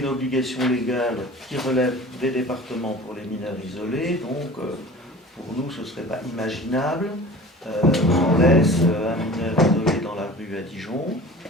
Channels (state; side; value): normal; both; correlation 0.40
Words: obligation légale qui relève des départements pour les mineurs isolés, donc pour nous ce ne serait pas imaginable qu'on laisse un mineur isolé dans la rue à Dijon.